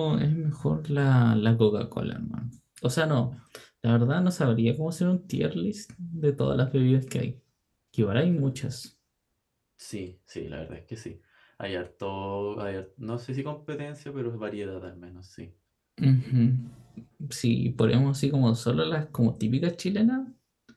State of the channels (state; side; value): identical; both; correlation 1.00